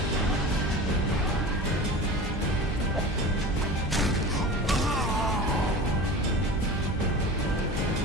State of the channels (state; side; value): normal; both; correlation 0.34